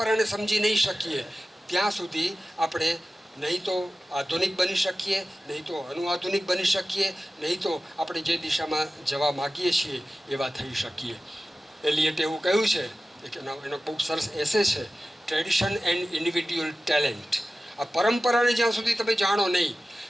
સમજી નહીં શકીએ ત્યાં સુધી આપણે નહીં તો આધુનિક બની શકીએ, નહીં તો અનુઆધુનિક બની શકીએ, નહીં તો આપણે જે દિશામાં જવા માગીએ છીએ એવા થઈ શકીએ. એલિયટે એવું કહ્યું છે, એનો બહુ સરસ એસે છે, ટ્રેડિશન એન્ડ ઇન્ડિવિડ્યુઅલ ટેલેન્ટ. આ પરંપરાને જ્યાં સુધી તમે જાણો નહીં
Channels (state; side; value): normal; both; correlation 0.95